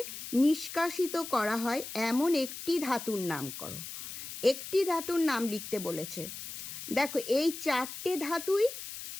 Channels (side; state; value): left; noise; hiss, 9 dB below the sound